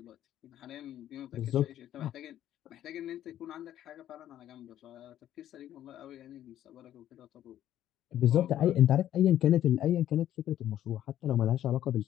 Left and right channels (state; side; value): quieter; right; 11.9 dB